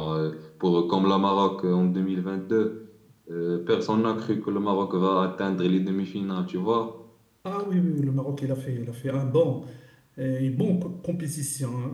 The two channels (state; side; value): identical; both; correlation 1.00